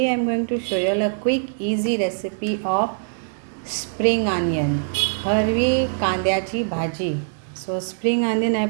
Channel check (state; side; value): silent; left; 64 dB below the other